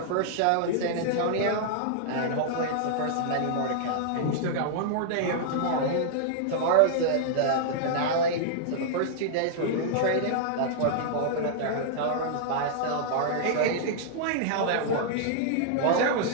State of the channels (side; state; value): both; different; correlation -0.01